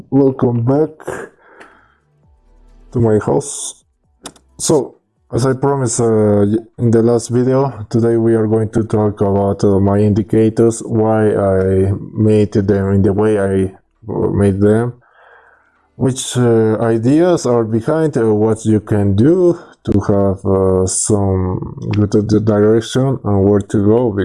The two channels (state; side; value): identical; both; correlation 1.00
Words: Welcome back to my house. So, as I promised in the last video, today we are going to talk about my indicators, why I made them in the way I made them, which ideas are behind what you can do to have some good direction and where to go,